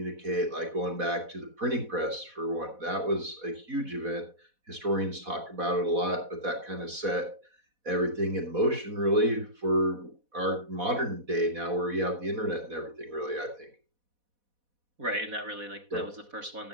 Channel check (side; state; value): left; late; 4.1 ms